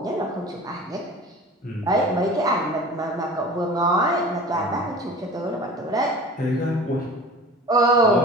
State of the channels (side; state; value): both; normal; correlation 0.39